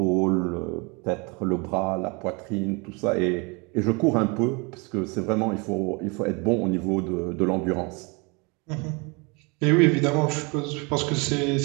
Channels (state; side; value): quieter; left; 29.6 dB